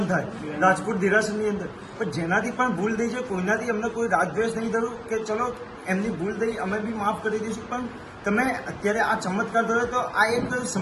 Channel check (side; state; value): both; identical; correlation 1.00